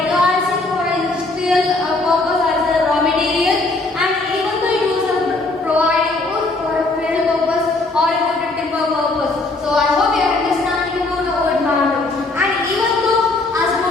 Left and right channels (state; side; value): quieter; right; 3.1 dB